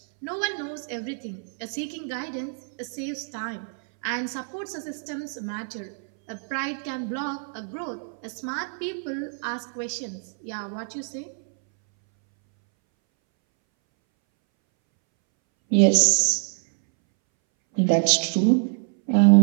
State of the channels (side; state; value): left; silent; 61 dB below the other